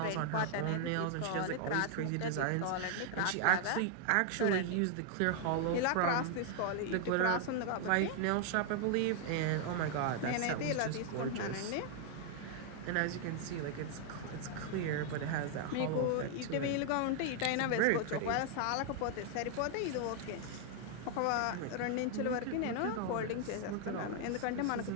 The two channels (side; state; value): both; different; correlation 0.00